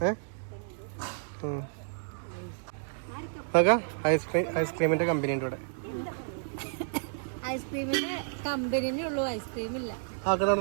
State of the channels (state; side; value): silent; left; digital silence